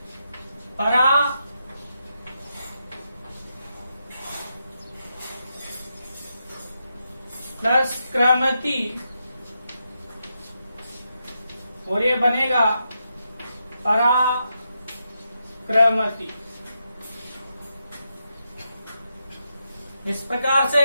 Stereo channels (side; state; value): both; inverted; correlation -0.84